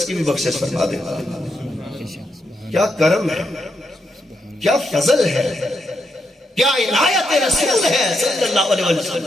کی بھی بخشش فرما دیتا ہے۔ کیا کرم ہے، کیا فضل ہے، کیا عنایت رسول ہے صلی اللہ علیہ وسلم۔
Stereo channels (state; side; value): normal; both; correlation 0.82